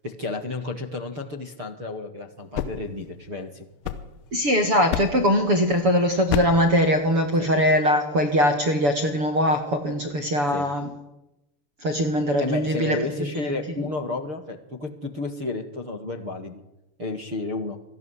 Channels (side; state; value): left; late; 7.0 ms